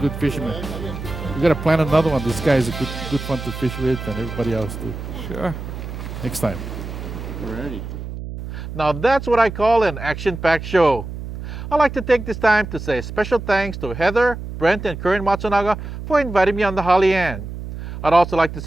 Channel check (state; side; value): noise; right; hum, 9 dB below the sound